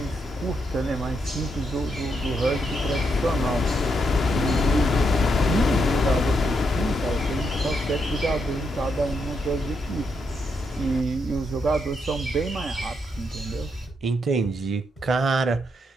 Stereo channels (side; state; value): both; normal; correlation 0.80